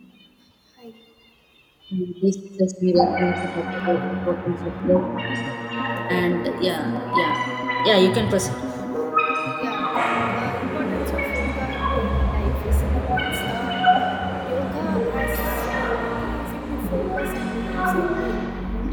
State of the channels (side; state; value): both; identical; correlation 1.00